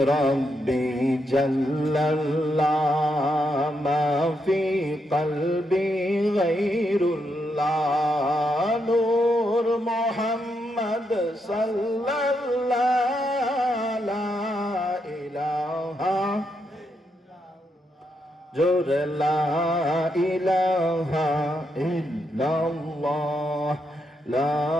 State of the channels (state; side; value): normal; both; correlation 0.80